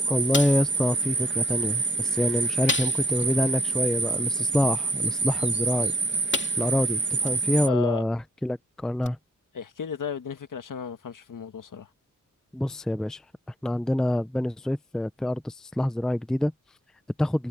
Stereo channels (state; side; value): normal; both; correlation 0.71